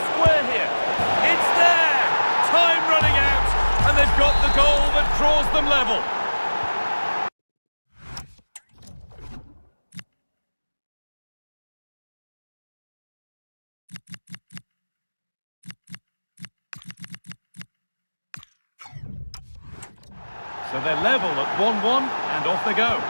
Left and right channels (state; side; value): inverted; both; correlation -1.00